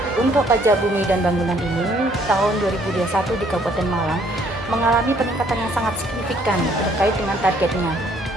Untuk pajak bumi dan bangunan ini, tahun 2021 di Kabupaten Malang mengalami peningkatan yang sangat signifikan terkait dengan targetnya.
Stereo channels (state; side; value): normal; both; correlation 0.64